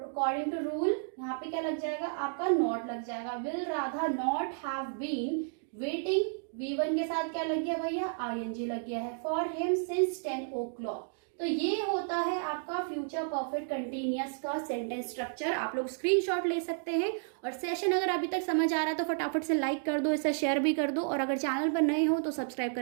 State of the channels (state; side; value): silent; left; digital silence